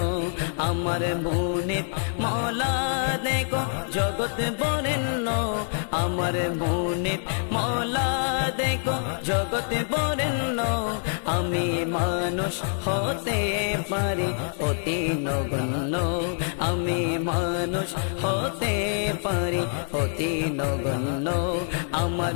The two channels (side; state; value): right; silent; digital silence